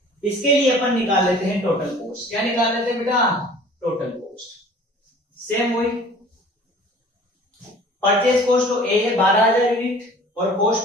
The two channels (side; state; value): both; normal; correlation 0.47